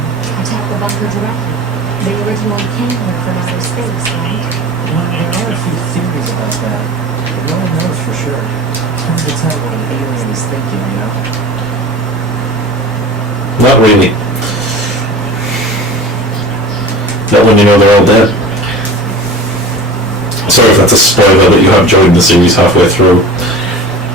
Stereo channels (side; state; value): both; normal; correlation 0.36